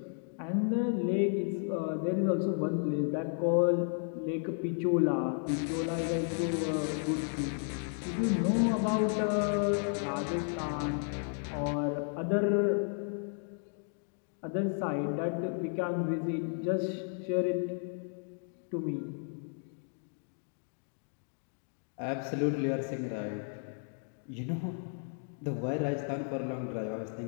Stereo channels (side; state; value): right; silent; 56 dB below the other